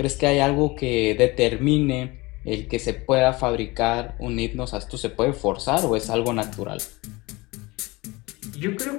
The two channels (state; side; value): quieter; right; 23.0 dB